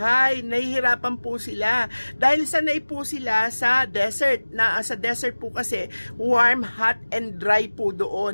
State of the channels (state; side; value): inverted; both; correlation -1.00